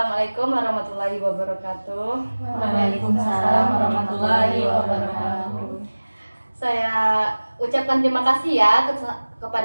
warahmatullahi wabarakatuh. Waalaikumsalam warahmatullahi wabarakatuh. Saya ucapkan terima kasih ya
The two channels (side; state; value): both; inverted; correlation -1.00